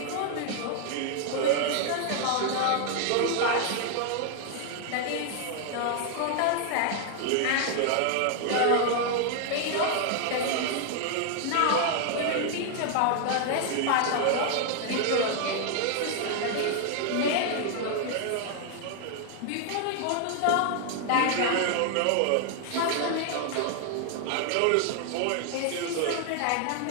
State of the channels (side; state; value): both; different; correlation 0.00